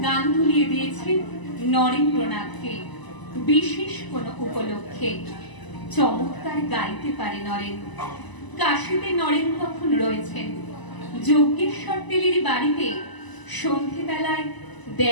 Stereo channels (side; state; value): right; late; 1.0 ms